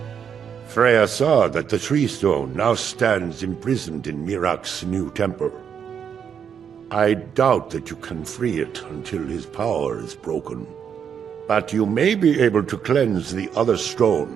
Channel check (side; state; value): left; quieter; 7.7 dB